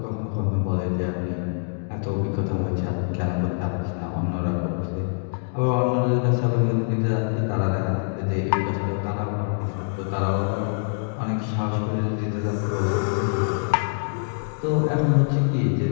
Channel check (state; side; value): silent; right; digital silence